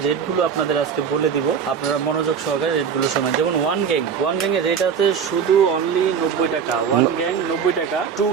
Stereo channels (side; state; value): left; quieter; 6.9 dB